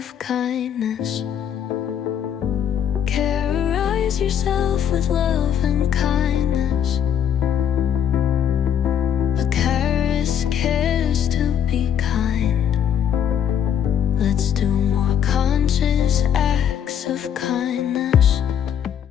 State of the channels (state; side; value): quieter; right; 9.0 dB